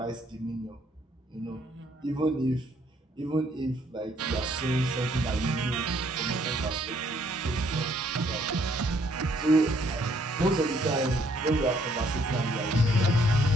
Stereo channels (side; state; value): both; normal; correlation 0.67